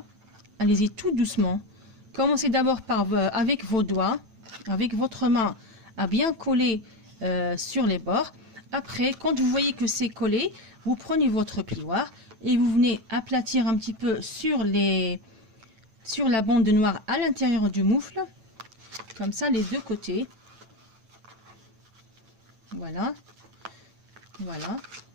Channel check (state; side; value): late; left; 9.0 ms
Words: Allez-y tout doucement. Commencez d'abord par avec vos doigts, avec votre main, à bien coller sur les bords. Après, quand vous voyez que c'est collé, vous prenez votre plioir et vous venez aplatir un petit peu sur la bande noire à l'intérieur du moufle. Comme ça, les deux côtés. Voilà. Voilà.